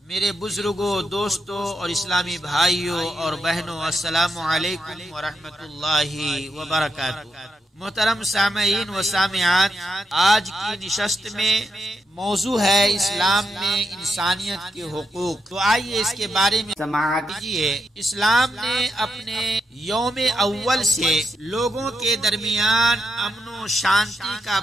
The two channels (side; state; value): both; normal; correlation 0.83